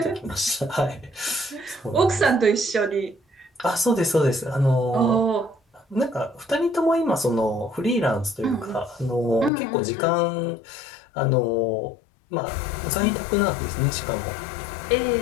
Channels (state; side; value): drops out; right; at 9.5 s